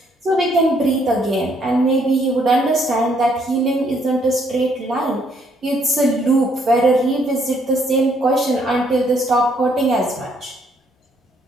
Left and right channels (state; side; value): normal; both; correlation 0.69